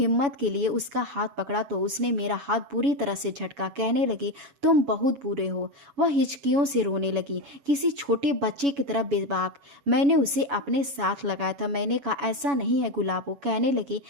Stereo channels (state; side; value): late; left; 7.1 ms